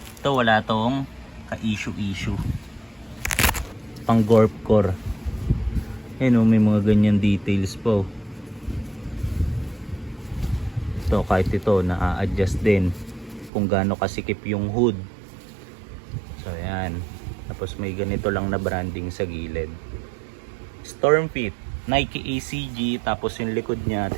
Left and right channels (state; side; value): drops out; left; at 13.5 s